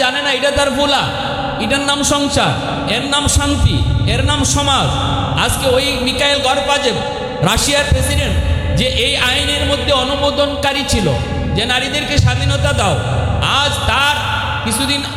জানে না এটা তার ফুলা। এটার নাম সংসার, এর নাম শান্তি, এর নাম সমাজ। আজকে ওই মিখাইল গরবাচেভ, রাশিয়ার প্রেসিডেন্ট, যে এই আইনের মধ্যে অনুমোদনকারী ছিল যে নারীদেরকে স্বাধীনতা দাও, আজ তার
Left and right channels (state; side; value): identical; both; correlation 1.00